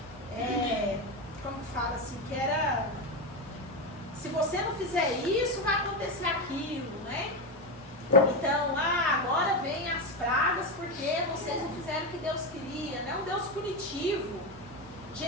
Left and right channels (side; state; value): both; normal; correlation 0.13